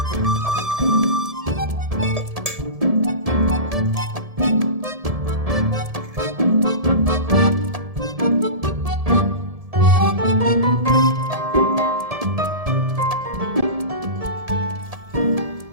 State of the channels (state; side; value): late; left; 1.7 ms